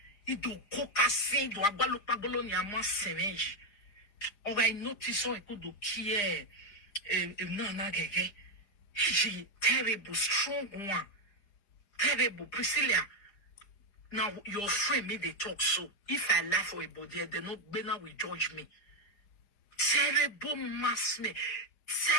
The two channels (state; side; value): late; right; 4.9 ms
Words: It do coca say do agalo pagolo ni ama semenji. Or I notice so I could do kia no gege. She terrible, strong one. Terrible. Priscilla. Now your friend made they talk so. If I laugh for a body, they not better will judge me. Terrible mass me.